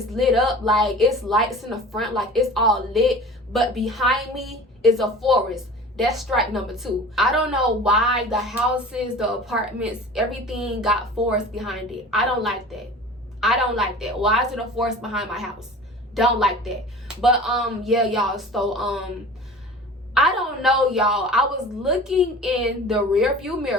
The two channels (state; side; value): normal; both; correlation 0.40